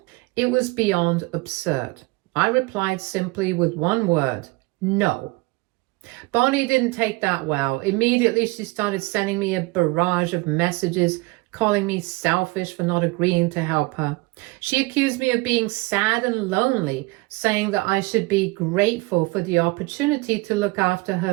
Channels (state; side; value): quieter; left; 24.0 dB